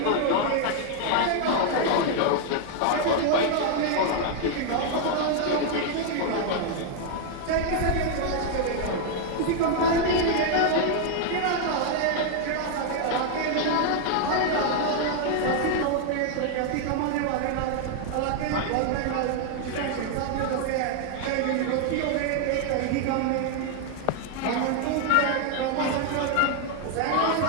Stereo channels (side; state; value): both; different; correlation 0.00